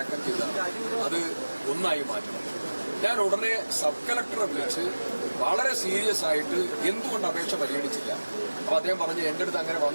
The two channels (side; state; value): both; inverted; correlation -1.00